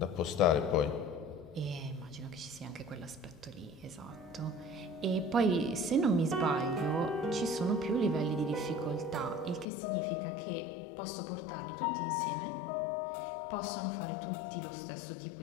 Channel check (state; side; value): drops out; right; at 9.7 s